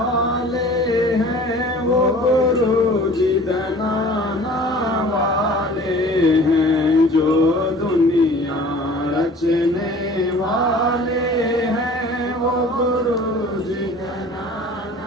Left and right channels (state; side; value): normal; both; correlation 0.46